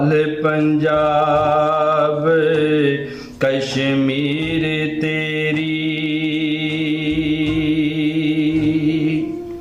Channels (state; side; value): identical; both; correlation 1.00